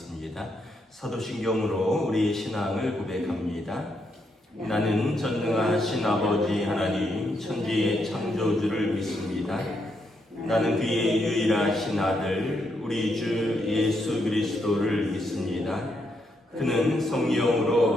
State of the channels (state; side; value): normal; both; correlation 0.79